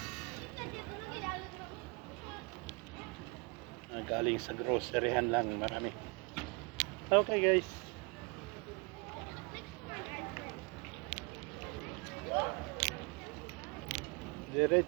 Galing sa groceryhan lang, marami. Okay guys.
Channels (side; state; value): left; quieter; 30.8 dB